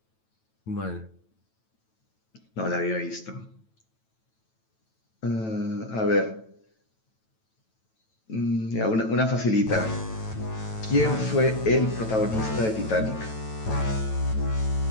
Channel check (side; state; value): right; late; 9.1 ms